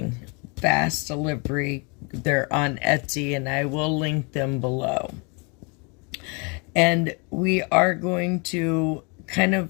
fast delivery. They're on Etsy, and I will link them below. And we are going to kind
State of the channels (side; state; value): right; quieter; 32.3 dB